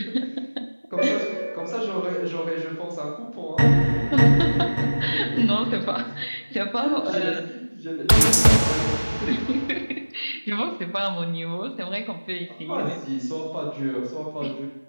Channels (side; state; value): both; inverted; correlation -1.00